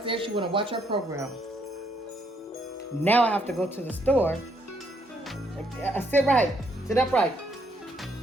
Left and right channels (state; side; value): normal; both; correlation 0.72